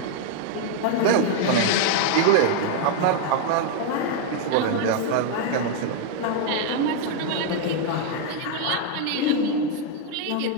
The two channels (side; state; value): both; different; correlation 0.00